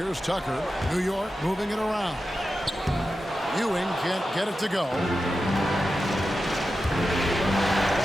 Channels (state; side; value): normal; both; correlation 0.91